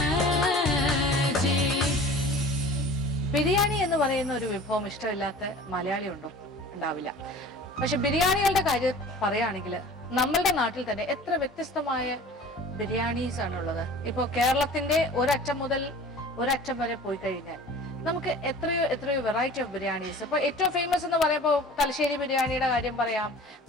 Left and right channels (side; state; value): both; normal; correlation 0.43